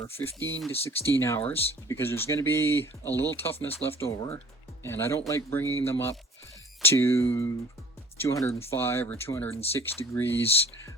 15 to 16 hours because there's going to be a little toughness left over, and I don't like bringing them up to 205 or 206 degrees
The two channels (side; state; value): both; normal; correlation 0.49